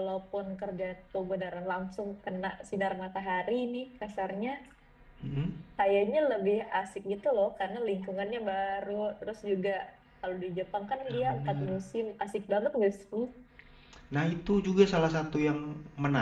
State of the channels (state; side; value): identical; both; correlation 1.00